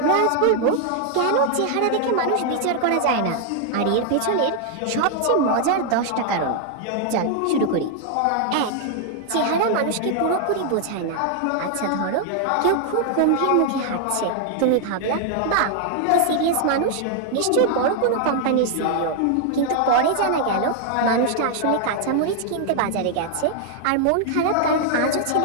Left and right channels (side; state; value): both; different; correlation 0.00